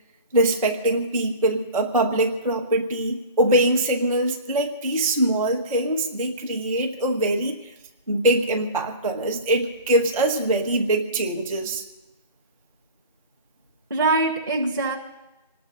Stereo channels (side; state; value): both; inverted; correlation -0.36